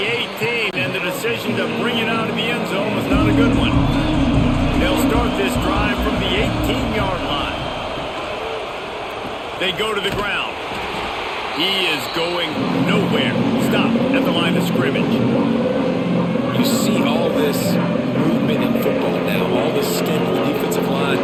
18, and the decision to bring it out of the end zone was not a good one. They'll start this drive from the 18-yard line. They go to the ground. He is going nowhere. Stop at the line of scrimmage. You see all this movement in football now, all this stint in the defensive line.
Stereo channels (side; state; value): both; identical; correlation 1.00